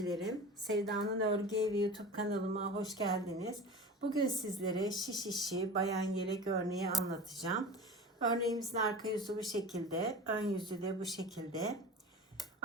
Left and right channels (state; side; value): normal; both; correlation 0.34